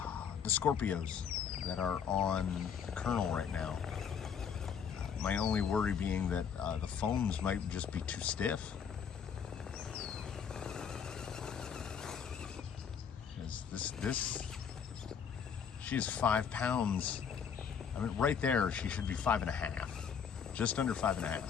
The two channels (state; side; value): quieter; right; 7.2 dB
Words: Scorpios that are on Colonel right now. My only worry being that the foams might just be too stiff. Because she is 5 pounds. I mean, right there, she should be 5.5, just under 5.5.